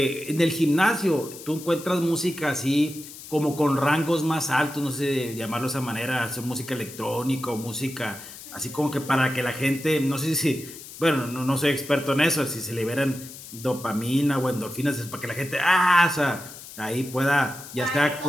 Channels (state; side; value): noise; left; hiss, 15 dB below the sound